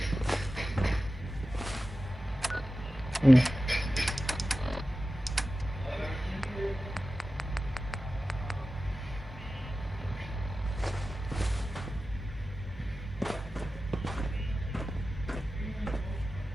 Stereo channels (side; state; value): both; normal; correlation 0.94